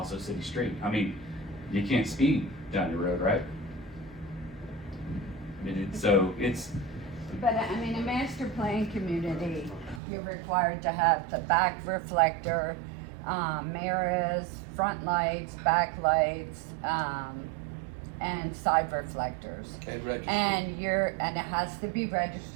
a city street. I mean, you can't speed down your road, right? I mean, But I mean, a master plan community, you're required to have the back reflector, mirrors, front lights, back lights, and side reflectors. And register. And it has to be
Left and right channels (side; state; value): left; drops out; at 10.0 s